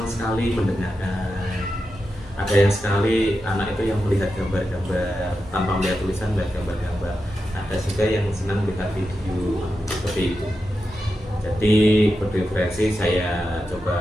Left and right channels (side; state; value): both; normal; correlation 0.89